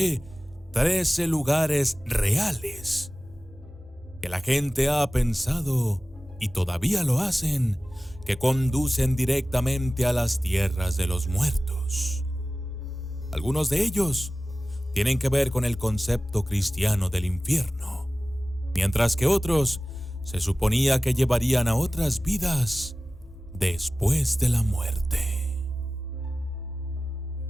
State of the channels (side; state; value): both; normal; correlation 0.97